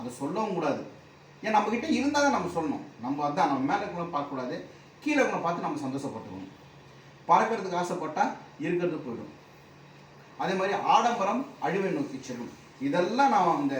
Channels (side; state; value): both; identical; correlation 1.00